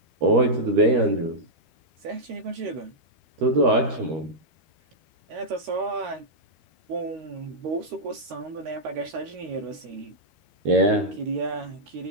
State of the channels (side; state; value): left; late; 13 ms